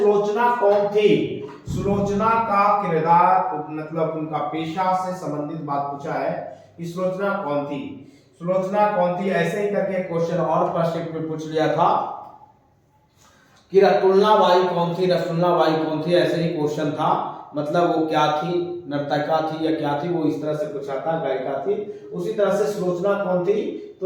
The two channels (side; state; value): both; identical; correlation 1.00